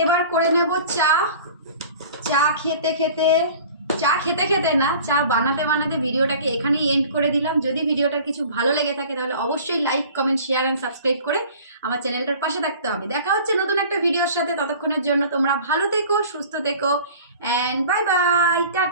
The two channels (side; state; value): both; inverted; correlation -0.45